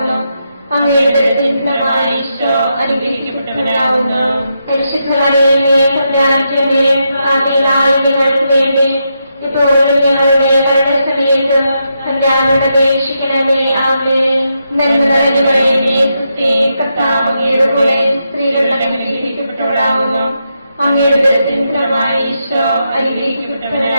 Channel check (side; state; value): both; inverted; correlation -0.83